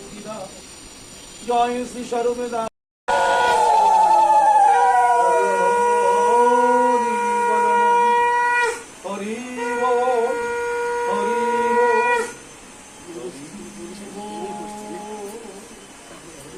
দাস, জয় শ্রী সর্বদা।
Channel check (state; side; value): identical; both; correlation 1.00